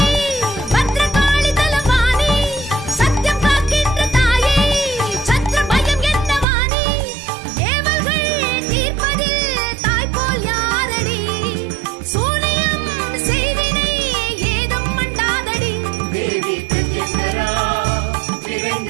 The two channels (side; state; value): left; drops out; at 6.5 s